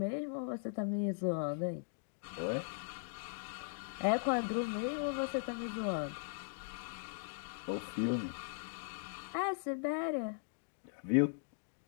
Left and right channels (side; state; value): right; silent; digital silence